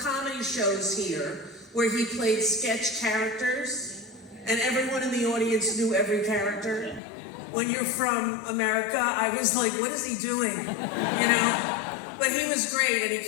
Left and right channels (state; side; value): drops out; right; at 7.0 s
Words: shows here where he played sketch characters, and everyone in the audience knew every character. When you're from America, I was like, what is he doing? You know? But he was great, and he